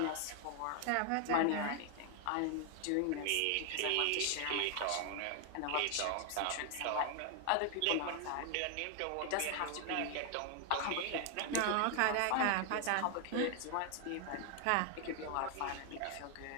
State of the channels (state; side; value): different; both; correlation 0.00